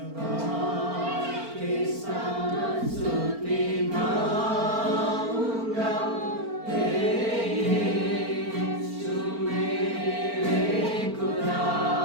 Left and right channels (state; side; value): late; left; 4.4 ms